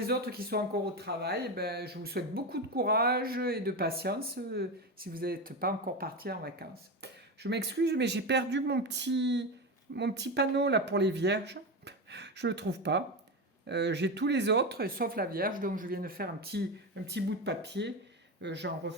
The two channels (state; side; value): normal; both; correlation 0.18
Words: autres qui sont encore au travail, je vous souhaite beaucoup de courage et de patience si vous n'êtes pas encore parti en vacances. Je m'excuse, mais j'ai perdu mon petit panneau là pour les Vierges. Je ne le trouve pas. J'ai tous les autres, sauf la Vierge, donc je viens de faire un petit bout de papier. J'en